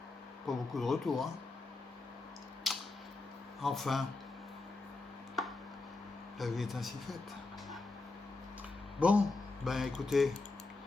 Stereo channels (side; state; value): right; quieter; 3.5 dB